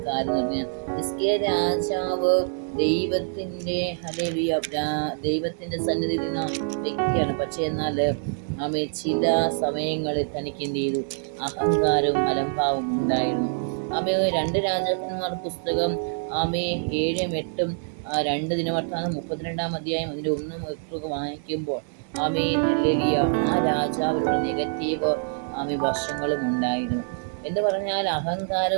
കാര്യം എന്ന് പറഞ്ഞാൽ, ഹിസ്കിയ രാജാവ് ദൈവത്തിൻ്റെ ഹല്ലേലൂയ ദൈവത്തിൻ്റെ സന്നിധിയിൽ നിന്ന വ്യക്തിയാണ്. പക്ഷേ എന്നാൽ ചില സമയങ്ങളിൽ തനിക്ക് എന്ത് ചെയ്തു? അഹങ്കാരവും അലംഭാവവും ഉണ്ടായിരുന്നു. 2 രാജാക്കന്മാർ പുസ്തകം 7-ഉം 8-ഉം 2 ദിനവൃത്താന്തം 32 അധ്യായം അതിൻ്റെ 1-ഉം വായിക്കുമ്പോൾ ഹല്ലേലൂയ ആ രാജാവിനുള്ള നെഗറ്റീവ് വശങ്ങളും ഉണ്ടായിരുന്നു. എന്ന് പറഞ്ഞാൽ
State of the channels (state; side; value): silent; left; 61 dB below the other